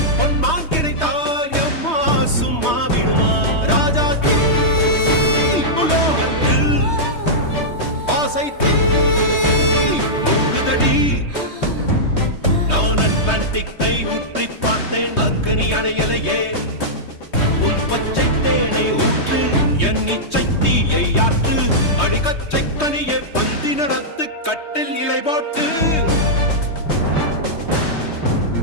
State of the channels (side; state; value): right; late; 3.2 ms